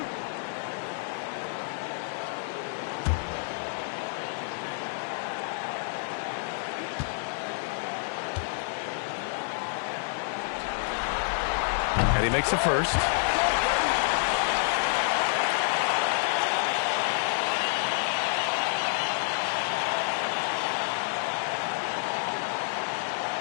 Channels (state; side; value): silent; right; digital silence